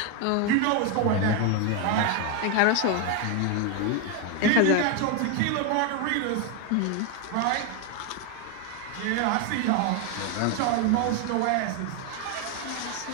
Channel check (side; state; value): both; different; correlation 0.01